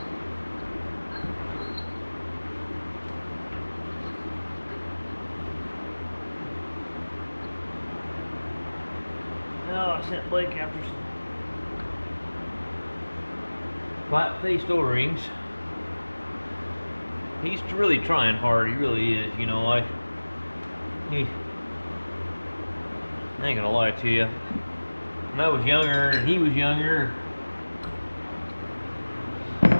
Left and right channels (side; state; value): both; inverted; correlation -1.00